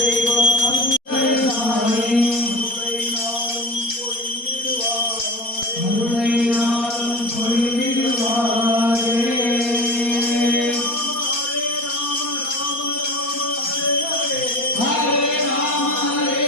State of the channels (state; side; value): late; right; 4.2 ms